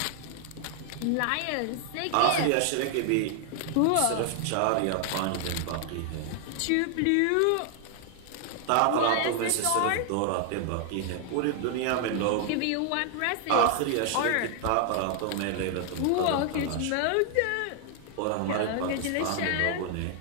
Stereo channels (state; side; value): different; both; correlation 0.00